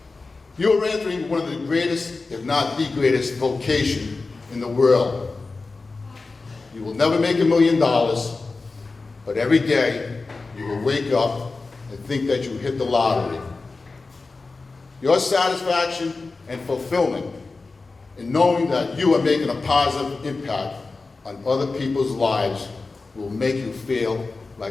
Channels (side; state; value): right; quieter; 3.8 dB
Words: You are entering one of the greatest, if not the greatest, vocation in the world. You will never make $1 million, but every day you will wake up and think that you hit the lottery. Your satisfaction and fulfillment in knowing that you are making a positive impact on other people's lives will make you feel